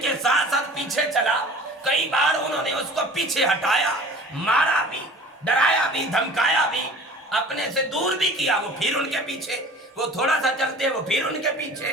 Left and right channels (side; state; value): both; normal; correlation 0.44